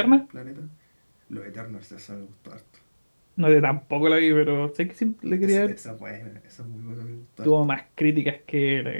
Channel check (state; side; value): inverted; both; correlation -1.00